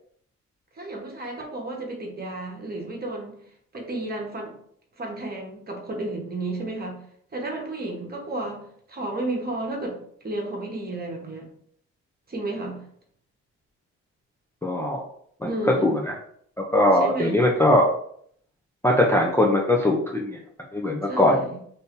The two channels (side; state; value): both; normal; correlation 0.46